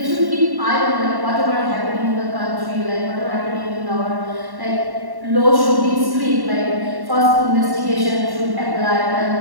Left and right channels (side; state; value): left; late; 1.1 ms